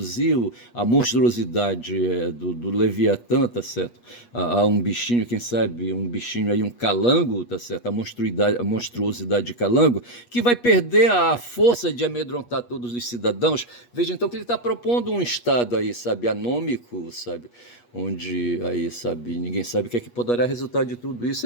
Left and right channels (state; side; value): late; right; 8.3 ms